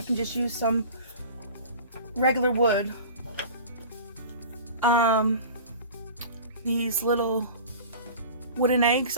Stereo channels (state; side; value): inverted; both; correlation -0.39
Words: can just use some regular wood. These little wooden eggs